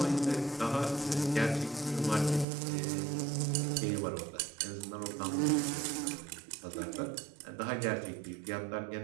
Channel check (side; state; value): left; drops out; at 2.5 s